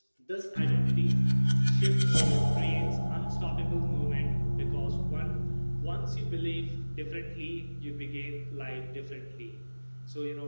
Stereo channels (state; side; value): inverted; both; correlation -1.00